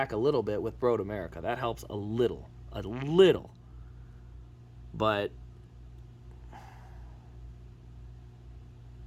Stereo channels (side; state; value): both; identical; correlation 1.00